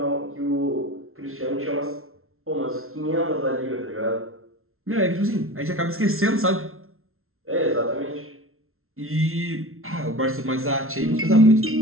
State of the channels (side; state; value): left; late; 0.62 ms